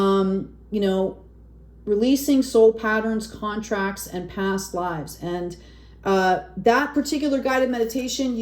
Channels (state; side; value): identical; both; correlation 1.00